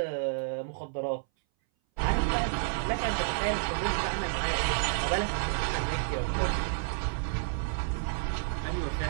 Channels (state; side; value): silent; left; 58 dB below the other